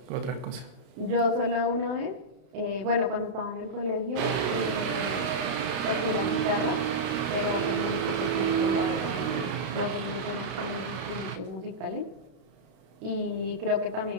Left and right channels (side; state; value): left; late; 32 ms